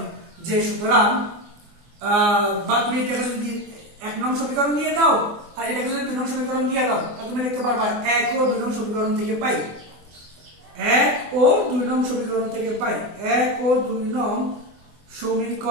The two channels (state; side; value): late; left; 24 ms